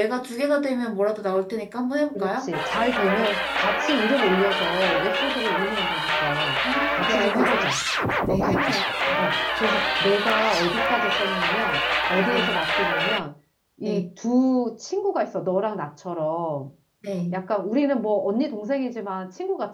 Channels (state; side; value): identical; both; correlation 1.00